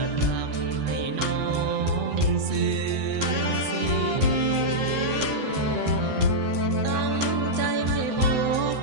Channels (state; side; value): late; left; 8.0 ms